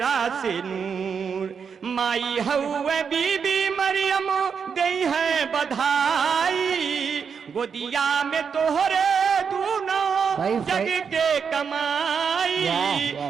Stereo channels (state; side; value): quieter; left; 6.4 dB